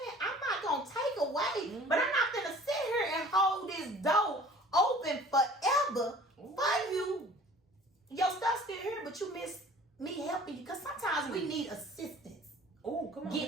I'm not gonna take away, but I'm not gonna sit here and hold this door open forever for you. Your stuff's still here, but you miss me helping you. Because sometimes we need assistance come on,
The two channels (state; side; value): normal; both; correlation 0.48